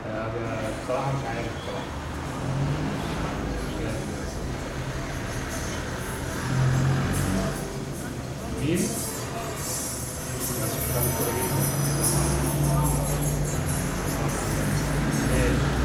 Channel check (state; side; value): identical; both; correlation 1.00